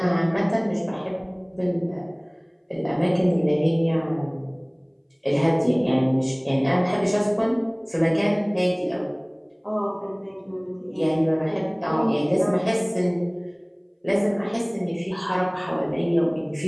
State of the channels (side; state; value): both; identical; correlation 1.00